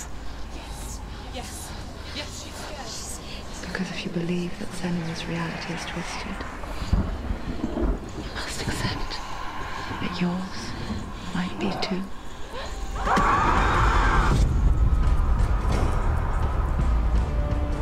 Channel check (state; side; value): identical; both; correlation 1.00